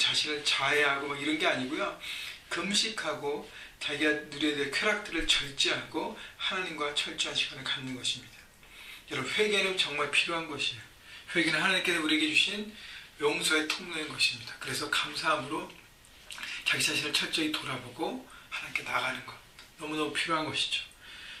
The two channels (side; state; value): both; identical; correlation 1.00